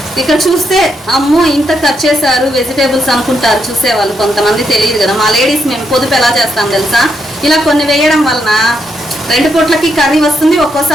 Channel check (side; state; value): both; normal; correlation 0.79